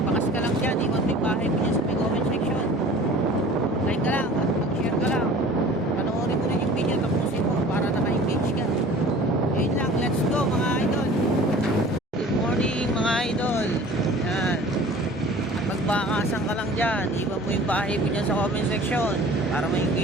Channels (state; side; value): normal; both; correlation 0.45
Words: ka lang dyan, iwan mo yung bahay mo dyan sa may comment section, like ka lang at mag-share ka lang, panoorin mo rin yung video, tapusin mo para naka-engage ka. Yun lang, let's go mga idol. Good morning mga idol. Yan, magbakasan ka lang dyan, iwan mo yung bahay mo dyan sa comment section para